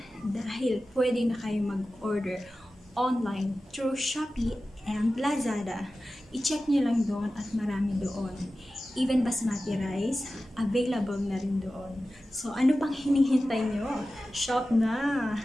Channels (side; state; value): both; normal; correlation 0.94